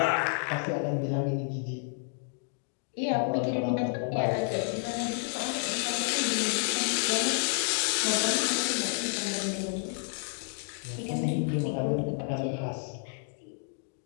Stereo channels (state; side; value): silent; right; 58 dB below the other